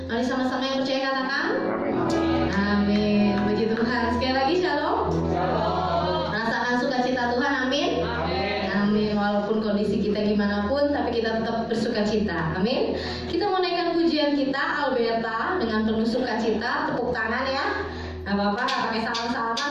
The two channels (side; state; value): both; identical; correlation 1.00